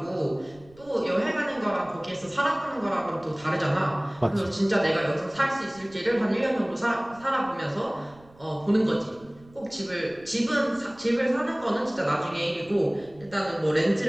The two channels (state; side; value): noise; right; rumble, 25 dB below the sound